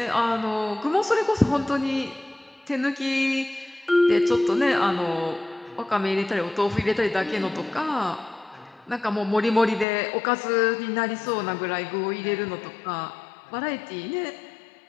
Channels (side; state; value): right; drops out; at 9.9 s